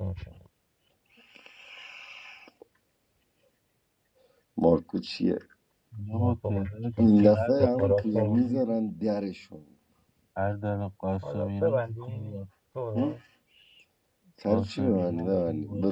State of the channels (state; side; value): identical; both; correlation 1.00